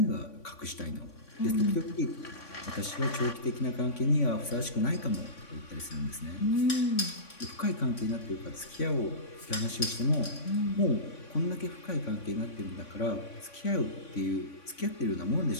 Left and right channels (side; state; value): right; late; 3.5 ms